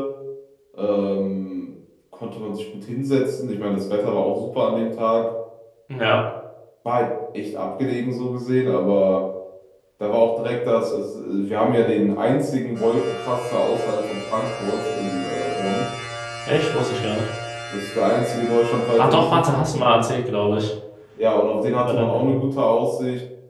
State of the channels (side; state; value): both; identical; correlation 1.00